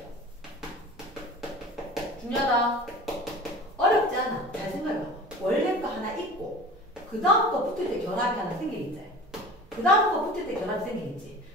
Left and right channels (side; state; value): both; normal; correlation 0.39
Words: 중요하다. 어렵지 않아. 잘 생각해봐. 원래 거 하나 있고 그 다음 거 붙을 때 결합이 하나 생기겠지. 그 다음 거 붙을 때 결합이 생기겠지.